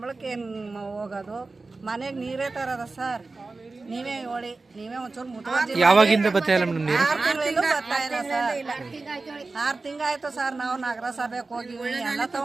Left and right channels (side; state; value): left; quieter; 3.7 dB